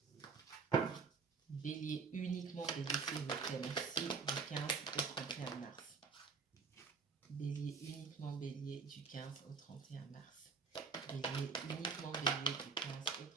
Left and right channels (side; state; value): left; quieter; 5.1 dB